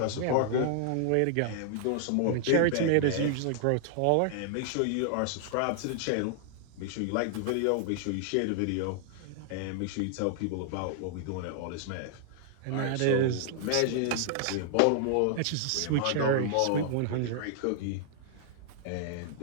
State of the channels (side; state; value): both; different; correlation -0.01